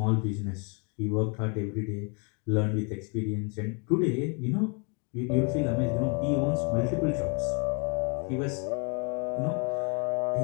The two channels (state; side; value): quieter; right; 35.5 dB